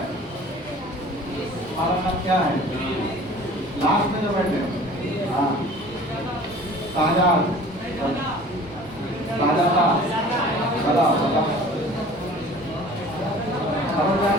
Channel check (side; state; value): both; normal; correlation 0.46